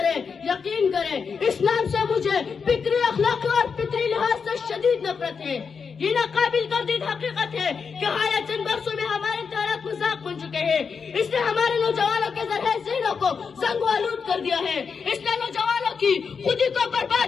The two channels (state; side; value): quieter; right; 5.8 dB